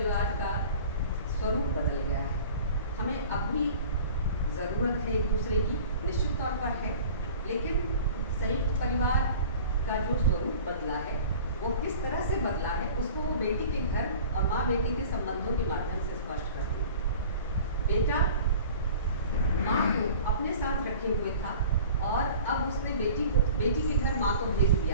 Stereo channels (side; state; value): both; inverted; correlation -0.43